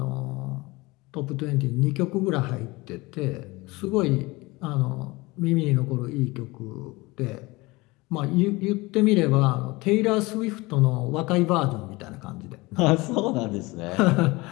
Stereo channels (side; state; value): right; quieter; 22.6 dB